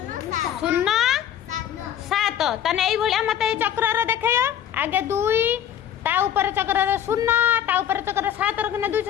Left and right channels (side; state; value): right; quieter; 10.0 dB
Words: तने एई भलिया मते ए चक्र रे देखैयो आगे 2 ता ऊपर चक्र रे 0 ता ऊपर चक्र 7 रखने